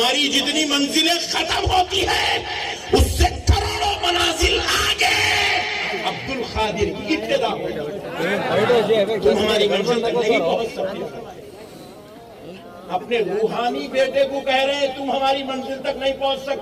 جتنی منزلیں ختم ہوتی ہے اس سے کروڑوں منازل آگے عبد القادر کی ابتدا ہوتی ہے. تم ہماری منزل تک نہیں پہنچ سکتے. اپنے روحانی بیٹے کو کہہ رہے ہیں تم ہماری منزل تک نہیں پہنچ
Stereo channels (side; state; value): both; identical; correlation 1.00